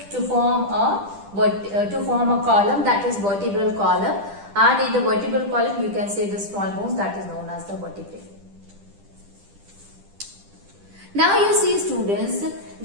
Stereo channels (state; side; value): late; left; 10 ms